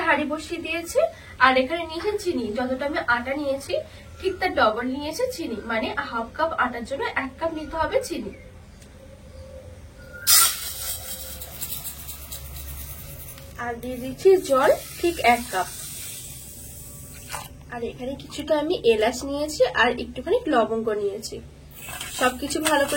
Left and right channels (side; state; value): both; identical; correlation 1.00